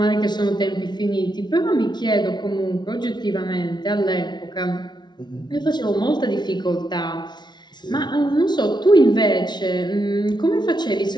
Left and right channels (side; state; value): right; late; 0.20 ms